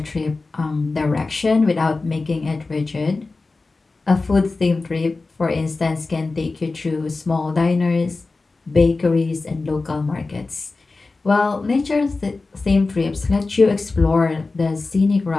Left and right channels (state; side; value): quieter; right; 3.6 dB